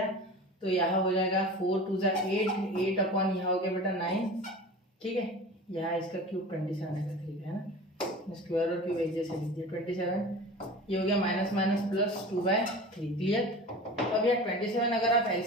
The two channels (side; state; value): both; normal; correlation 0.36